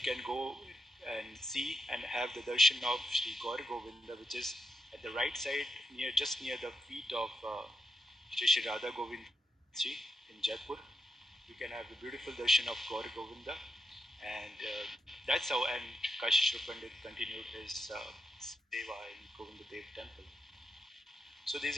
go and see and have the darshan of Sri Gaur Govinda, which is at the right side just near the feet of Shri Radha Govind Ji in Jaipur. You can have the beautiful darshan of Gaur Govinda, and that's how. And Kashishwar Pandit continued his seva in Govinda Dev temple. So these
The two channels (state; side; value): normal; both; correlation 0.84